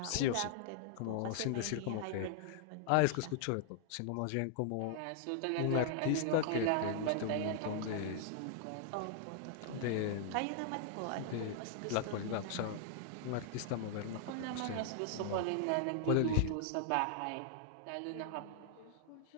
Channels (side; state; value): both; different; correlation -0.01